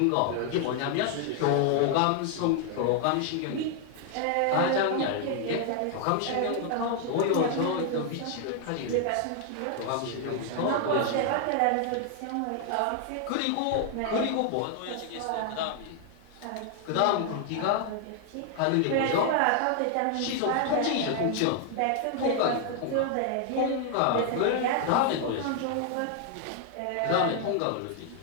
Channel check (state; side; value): different; both; correlation 0.00